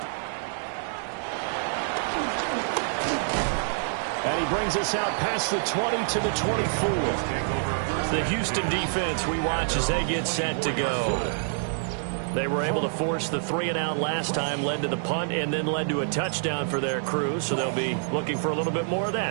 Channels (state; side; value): silent; left; digital silence